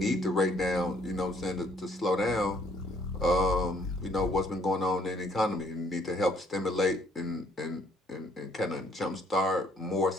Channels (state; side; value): normal; both; correlation 0.64